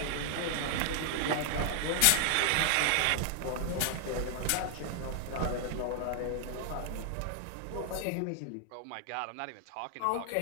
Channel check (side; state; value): both; different; correlation 0.00